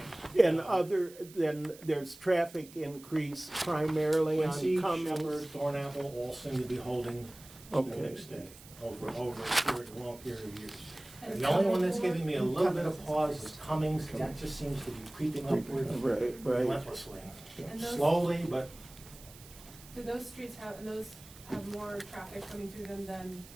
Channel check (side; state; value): right; noise; hiss, 20 dB below the sound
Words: Yeah. And other than, there's traffic increase primarily on Quincy, Cummings? Shepherd, Thornapple all seem to be holding Okay. steady over a long period of years. The only one that's giving me a little bit of pause is Cummings. That just seems to be creeping upward Right, right. relentlessly. And those- Slowly, but Do those streets have more traffic coming through them than